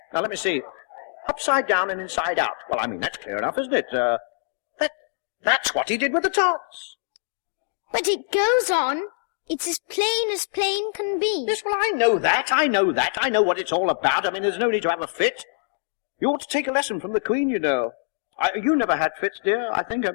Now, let me see. Upside down and inside out. Well, I mean, that's clear enough, isn't it? That's what he did with the tarts. But it goes on. It's as plain can be. Yes, well, I know that. I know what it's all about. I mean, there's no need to have a fit. You ought to take a lesson from the Queen, you know. You never had fits, dear, I think, have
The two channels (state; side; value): silent; right; digital silence